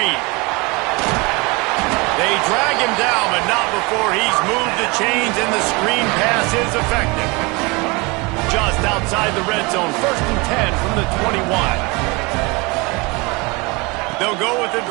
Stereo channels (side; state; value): left; quieter; 26.7 dB